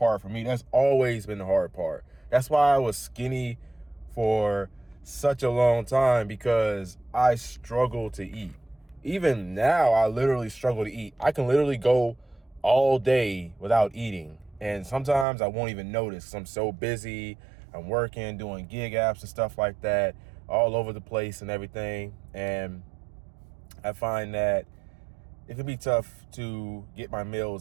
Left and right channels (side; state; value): left; drops out; at 15.2 s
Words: for me. That's always been the hard part. That's why I was skinny for such a long time, because I struggle to eat. Even now, I literally struggle to eat. I can literally go all day without eating. And sometimes I won't even notice 'cause I'm so busy. I'm working, doing gig apps and stuff like that, all over the place and everything. And I find that it can be tough to get my